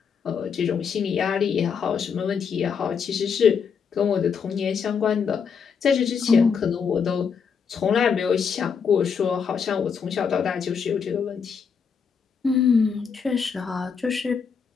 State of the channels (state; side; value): quieter; right; 6.3 dB